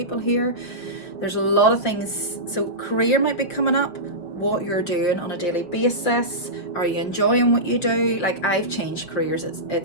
here. There's a lot of things. So career might be coming up. What you're doing on a daily basis. Are you enjoying what you do? Like, I've changed careers.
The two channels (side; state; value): right; late; 5.7 ms